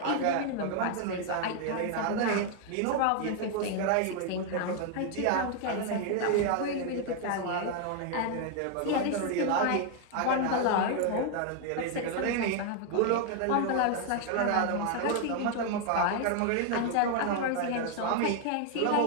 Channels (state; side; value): different; both; correlation 0.00